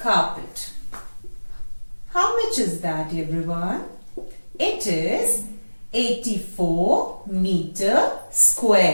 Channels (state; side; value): inverted; both; correlation -1.00